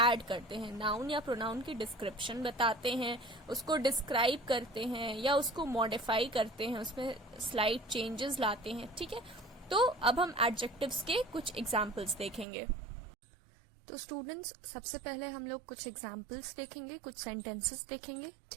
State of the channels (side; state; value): left; drops out; at 12.5 s